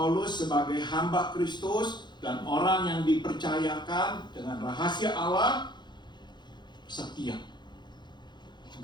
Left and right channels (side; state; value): right; late; 0.21 ms